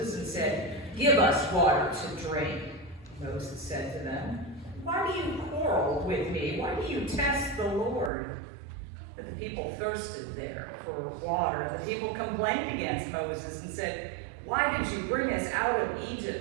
and said, "Give us water to drink." Moses said to them, "Why do you quarrel with me? Why do you test the Lord?" But the people thirsted there for water. The people complained against Moses and said, "Why did you bring us out of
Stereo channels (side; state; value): left; drops out; at 8.1 s